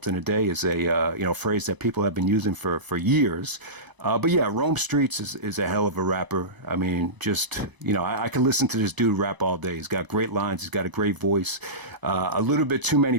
in a day is a phrase that people have been using for years. But yeah, Rome Streets is a hell of a rapper. I mean, just, I can listen to this dude rap all day. He's got great lines. He's got a great voice. A little bit too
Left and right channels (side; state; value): left; late; 1.0 ms